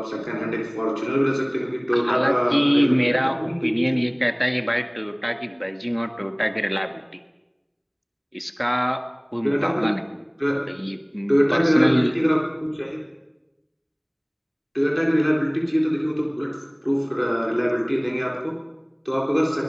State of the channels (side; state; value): both; identical; correlation 1.00